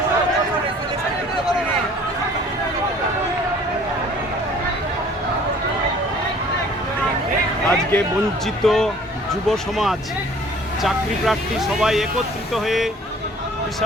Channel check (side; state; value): both; normal; correlation 0.52